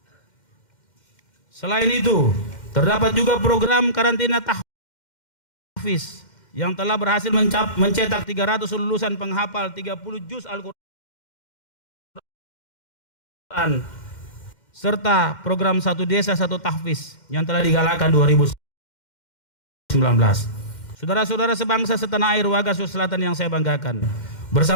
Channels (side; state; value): right; late; 2.1 ms